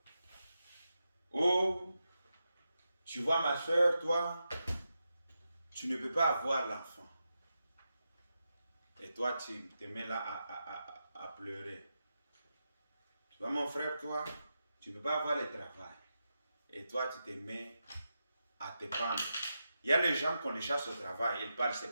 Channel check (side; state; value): both; inverted; correlation -0.88